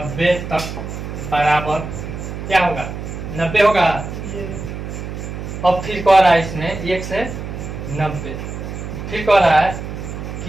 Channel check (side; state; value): right; noise; hum, 7 dB below the sound